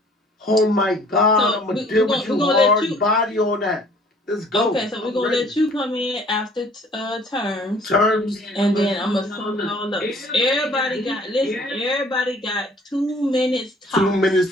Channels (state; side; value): normal; both; correlation 0.55